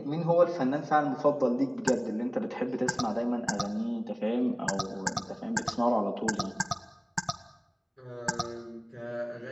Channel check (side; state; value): both; identical; correlation 1.00